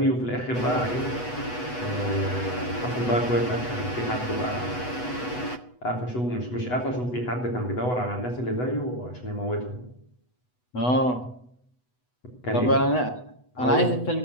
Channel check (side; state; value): right; late; 8.1 ms